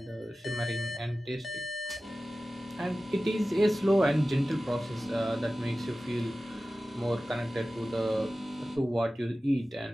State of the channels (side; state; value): both; normal; correlation 0.96